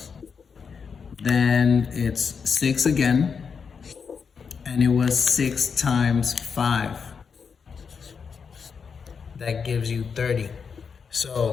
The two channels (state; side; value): quieter; right; 6.0 dB